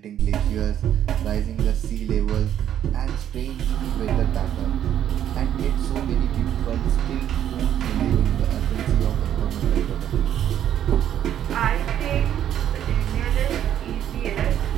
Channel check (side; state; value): left; quieter; 10.4 dB